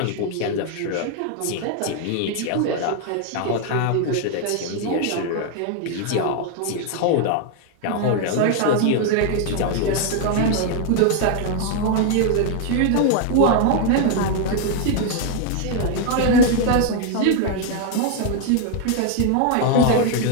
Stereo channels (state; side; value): different; both; correlation 0.00